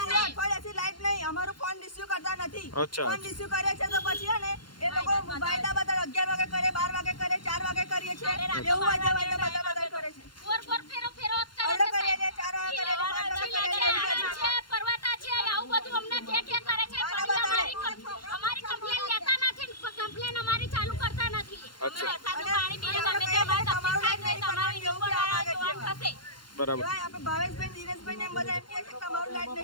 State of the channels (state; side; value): late; right; 0.71 ms